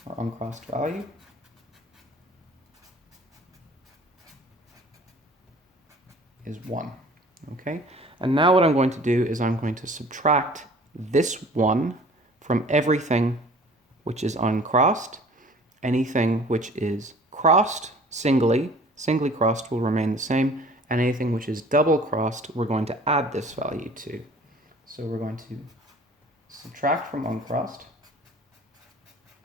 or uncrossed value, is 1. Okay, and now what I'm going to do is I'm going to subtract this 1 from everything which is uncrossed. Anything which is crossed singly crossed will remain the same, and anything which is double crossed we're going to add this value to. So we're going to subtract from uncrossed.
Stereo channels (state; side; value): normal; both; correlation 0.49